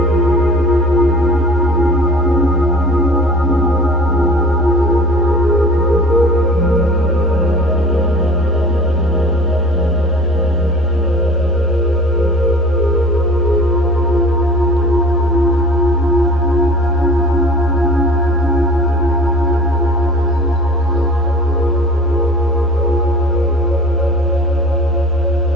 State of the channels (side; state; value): both; normal; correlation 0.44